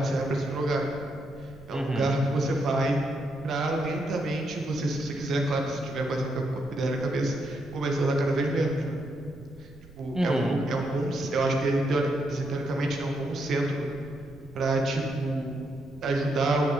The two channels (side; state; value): right; noise; rumble, 20 dB below the sound